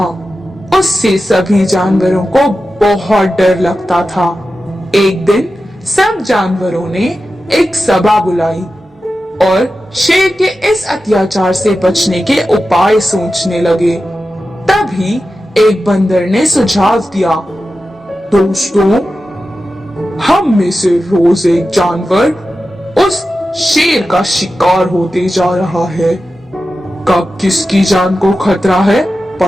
उससे सभी जानवरों को बहुत डर लगता था। एक दिन सब जानवरों ने एक सभा बुलाई और शेर के इस अत्याचार से बचने के उपाय सोचने लगे। तभी एक बंदर ने सुझाव दिया, दोस्तों, हम में से रोज एक जानवर उस शेर का शिकार होते जा रहा है। कब किसकी जान को खतरा है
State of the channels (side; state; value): both; normal; correlation 0.92